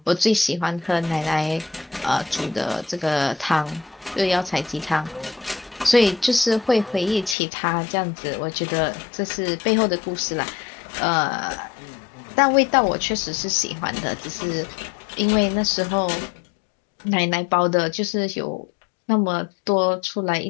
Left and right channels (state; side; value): drops out; right; at 7.4 s